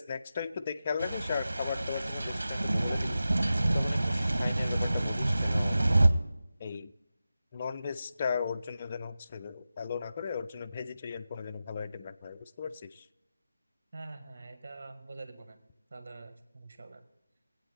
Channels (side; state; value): both; inverted; correlation -0.93